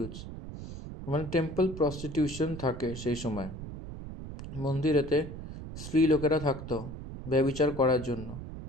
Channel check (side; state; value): right; noise; rumble, 10 dB below the sound